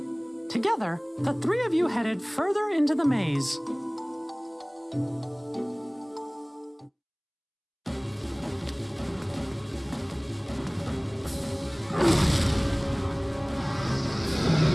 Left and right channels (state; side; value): identical; both; correlation 1.00